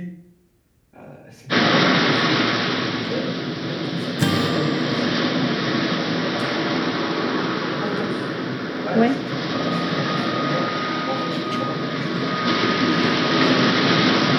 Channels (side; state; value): both; identical; correlation 1.00